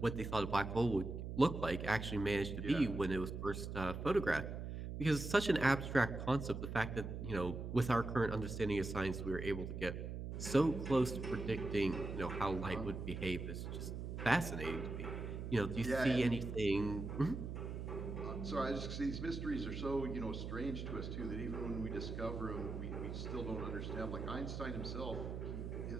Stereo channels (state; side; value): noise; right; hum, 6 dB below the sound